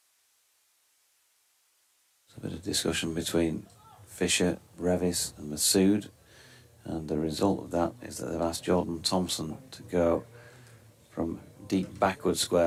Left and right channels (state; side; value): identical; both; correlation 1.00